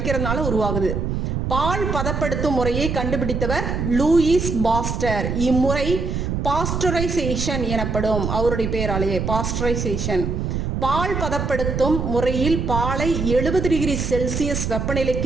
உருவாகுது. பால் பதப்படுத்தும் முறையை கண்டுபிடித்தவர் லூயிஸ் பாஸ்டர். இம்முறை பாஸ்டரைசேஷன் எனப்படும். அவருடைய பெயராலேயே பாஸ்டரைசேஷன். பால் பதப்படுத்தும் முறையில் பாலை 70 டிகிரி செல்சியஸ்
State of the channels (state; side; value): noise; right; rumble, 2 dB below the sound